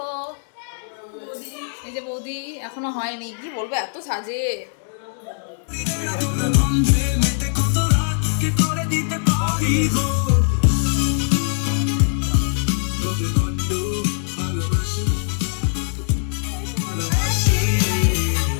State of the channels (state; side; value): silent; right; digital silence